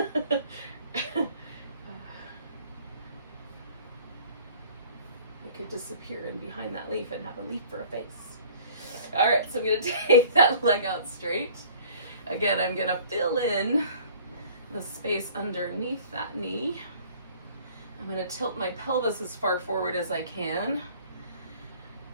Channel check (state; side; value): inverted; both; correlation -0.51